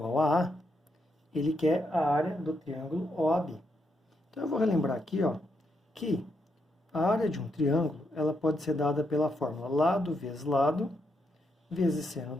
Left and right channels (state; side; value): normal; both; correlation 0.80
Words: a A, ele quer a área do triângulo OAB. Então, eu vou relembrar aqui, ó, que a área de um triângulo ela pode ser dada pela fórmula lado vezes seno